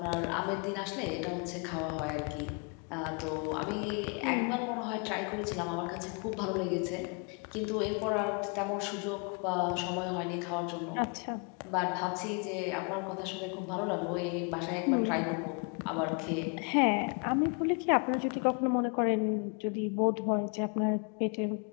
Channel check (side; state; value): right; quieter; 35.3 dB